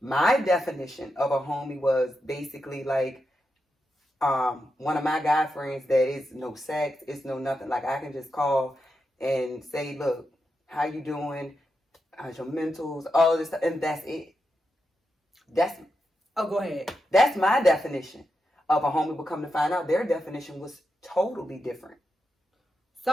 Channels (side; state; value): both; normal; correlation 0.87